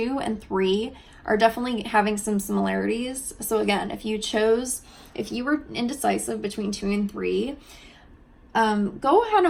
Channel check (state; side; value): identical; both; correlation 1.00